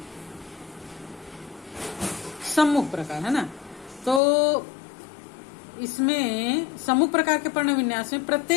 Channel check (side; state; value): right; drops out; at 4.2 s